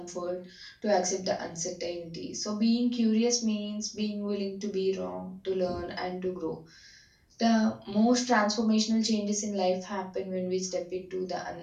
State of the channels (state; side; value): identical; both; correlation 1.00